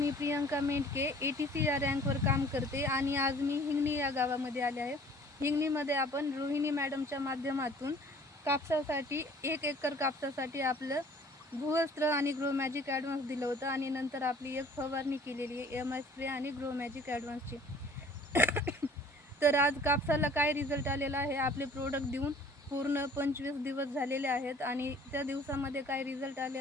Priyanka मेंढके ATC या रँकवर काम करते आणि आज मी हिंगणी या गावामध्ये आले आहे. हिंगणीमध्ये आपण रोहिणी मॅडमच्या माध्यमातून कापसासाठी 1 एकर कापसासाठी आपलं भूवस्त्र आणि ग्रो मॅजिक ॲडव्हान्स दिलं होतं आणि नंतर आपली एक फवारणी केलेली आहे MI स्प्रे आणि ग्रो मॅजिक ॲडव्हान्सची. तर आज कापसाला काय रिझल्ट आलेला आहे, आपले प्रोडक्ट देऊन पूर्ण 25 दिवस झालेले आहेत आणि त्या दिवसामध्ये काय रिझल्ट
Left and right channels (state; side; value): normal; both; correlation 0.52